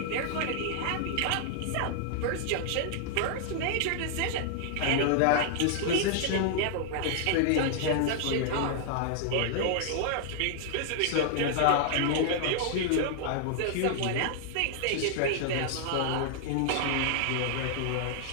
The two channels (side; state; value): both; different; correlation -0.01